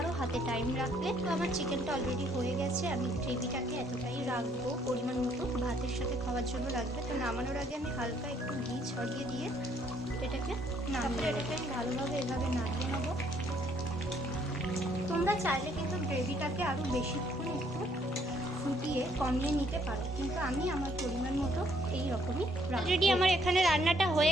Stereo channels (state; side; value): normal; both; correlation 0.66